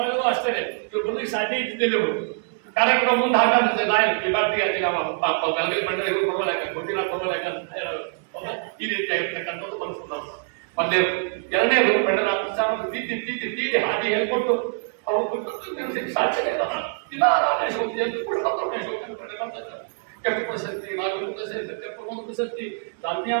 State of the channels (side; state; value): left; silent; 62 dB below the other